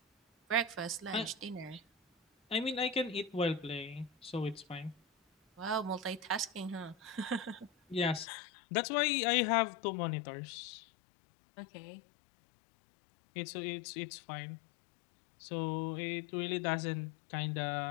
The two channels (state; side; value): drops out; right; at 8.2 s